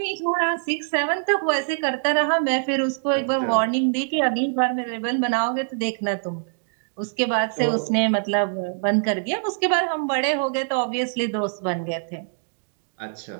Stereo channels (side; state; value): left; silent; digital silence